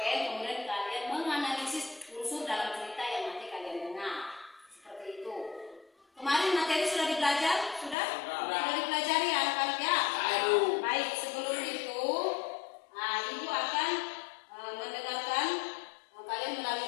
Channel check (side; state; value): right; drops out; at 8.0 s